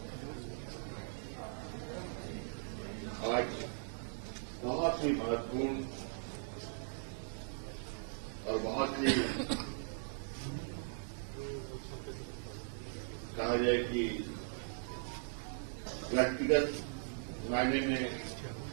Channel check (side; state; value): left; silent; digital silence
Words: आज बहुत ही महत्वपूर्ण और बहुत ही कहा जाए कि व्यक्तिगत मायने में